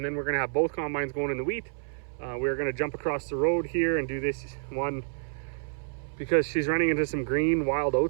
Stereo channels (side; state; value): left; silent; 59 dB below the other